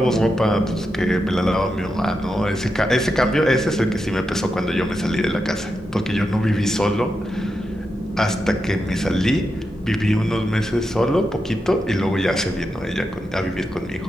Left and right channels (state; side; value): normal; both; correlation 0.87